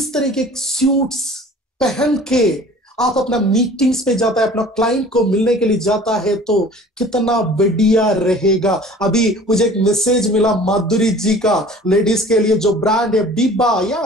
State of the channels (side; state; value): both; normal; correlation 0.46